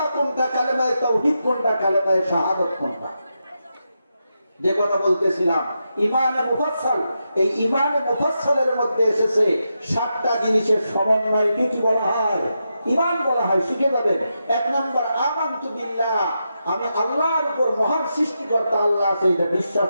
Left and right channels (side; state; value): both; inverted; correlation -0.86